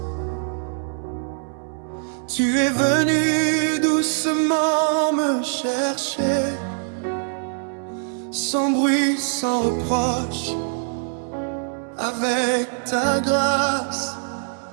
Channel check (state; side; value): silent; left; 63 dB below the other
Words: tu es venu doucement me chercher, sans bruit, sans reproche, avec ta grâce.